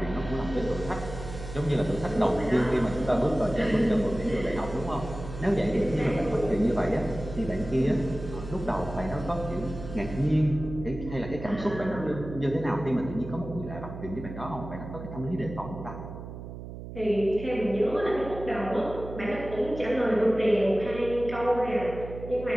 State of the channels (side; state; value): right; noise; hum, 11 dB below the sound